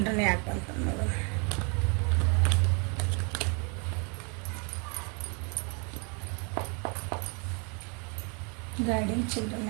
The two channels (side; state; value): left; quieter; 34.9 dB